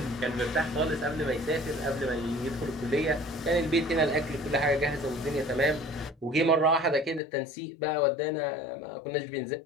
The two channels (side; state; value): right; drops out; at 7.2 s